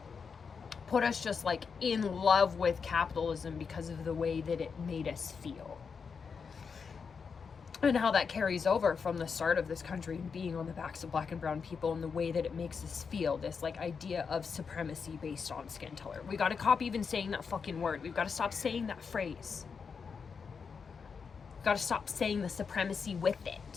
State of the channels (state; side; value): quieter; right; 5.7 dB